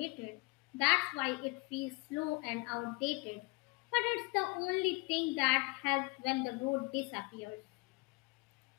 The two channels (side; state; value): right; quieter; 27.3 dB